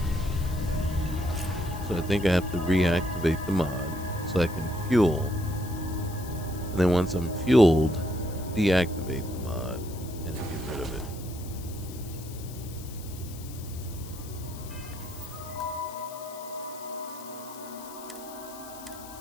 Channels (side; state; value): left; noise; hiss, 16 dB below the sound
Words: So I think I have to reactivate the mod so I can fuel. And then once I'm fueled, deactivate the mod and get rid of it.